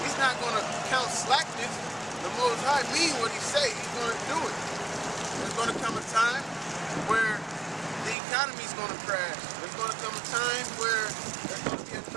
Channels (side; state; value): left; drops out; at 8.2 s